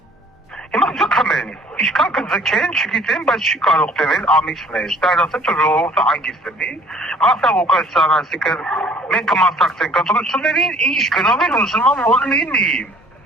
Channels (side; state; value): both; normal; correlation 0.54